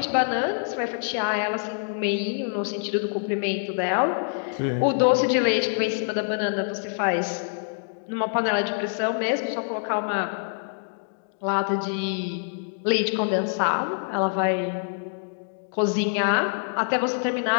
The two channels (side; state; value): right; silent; digital silence